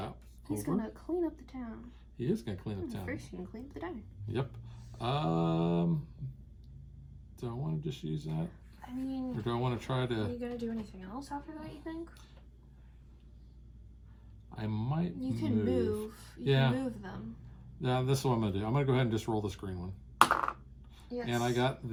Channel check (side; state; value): both; identical; correlation 1.00